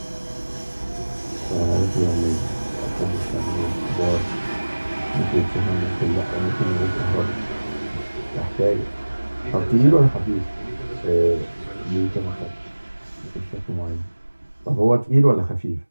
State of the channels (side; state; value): both; inverted; correlation -1.00